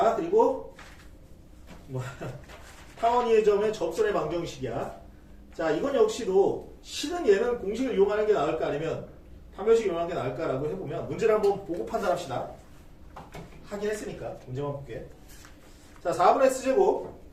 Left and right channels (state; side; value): identical; both; correlation 1.00